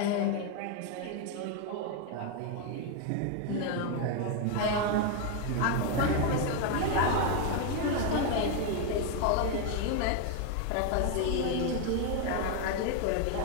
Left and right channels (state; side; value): different; both; correlation 0.01